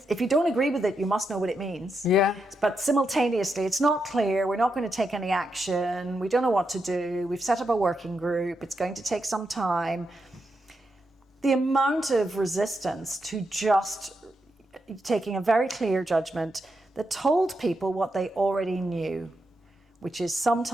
you don't agree with it, you must know what it means. Yeah. But simultaneously, it's not clear. We're not going to take any action. We don't know what to do. We've set up a working group. It's going to take some time. The amount of resistance to just taking a very clear judgment that told people what they already knew, which is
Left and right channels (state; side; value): normal; both; correlation 0.84